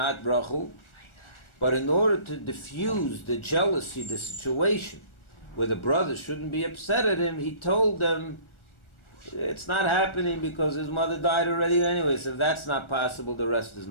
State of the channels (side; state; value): right; late; 1.4 ms